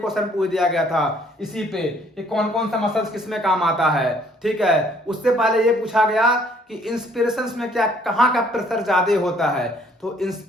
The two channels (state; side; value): normal; both; correlation 0.62